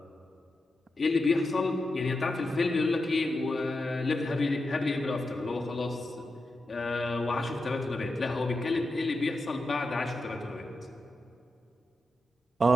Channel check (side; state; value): both; normal; correlation 0.89